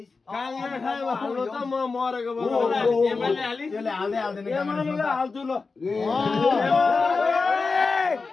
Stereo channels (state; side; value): quieter; right; 4.3 dB